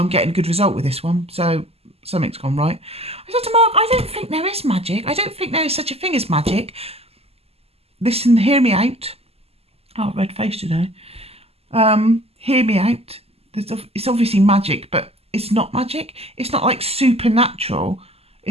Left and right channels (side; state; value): left; late; 0.29 ms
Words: getting a good result with this one, so something's gone right. I said to Mark, I don't think there is magic. I don't think there is such a thing as magic. Listen, hear me out. Oh, red face today. Hear me out. It's obviously magic, but it's not magic. It's not like supernatural.